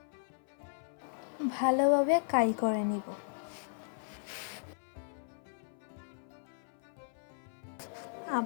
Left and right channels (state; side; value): silent; right; 54 dB below the other